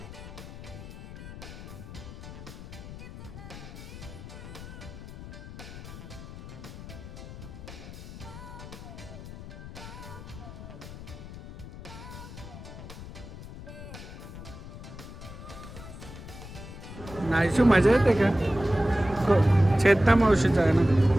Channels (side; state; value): left; noise; rumble, 12 dB below the sound